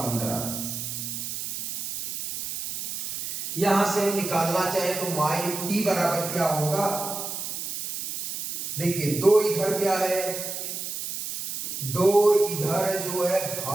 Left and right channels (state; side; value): noise; right; hiss, 5 dB below the sound